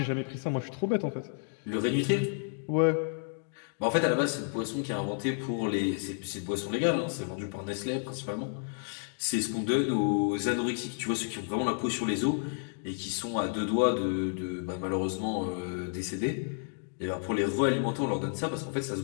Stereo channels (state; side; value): silent; right; 57 dB below the other